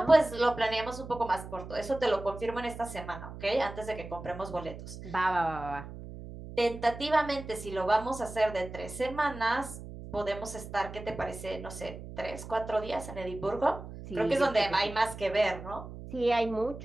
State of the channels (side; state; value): right; noise; hum, 12 dB below the sound